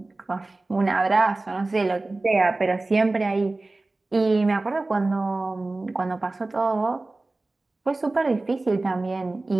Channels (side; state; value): left; quieter; 3.1 dB